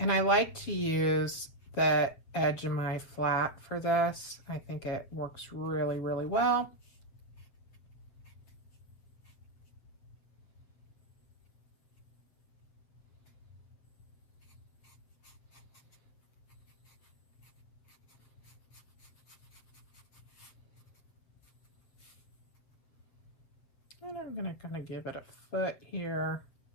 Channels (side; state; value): right; late; 7.7 ms